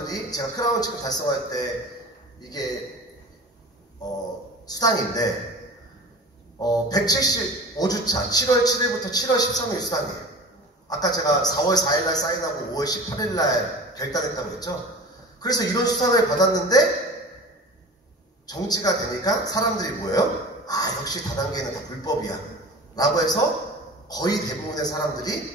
제가 크라운 직급 달성할 때 이게 수당인데 175주차 7월 7일부터 7월 13일 수당이에요. 아까 제가 4월 4일날 사인하고 5월 18일날 결단했다고 했죠. 그래서 이런 수당을 받았는데 정지가 되니까 사람들이 뭐예요? 역시 다단계는 다 불법이야 라고 해서 거의 대부분의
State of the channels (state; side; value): normal; both; correlation 0.37